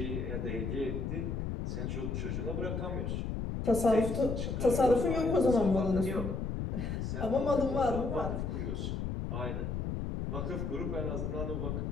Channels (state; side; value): noise; left; rumble, 2 dB below the sound